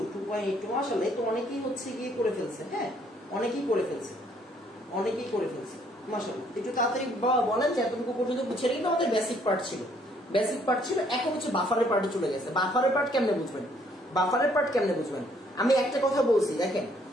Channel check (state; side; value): normal; both; correlation 0.65